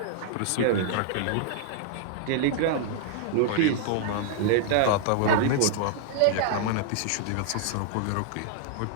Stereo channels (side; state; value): both; different; correlation -0.01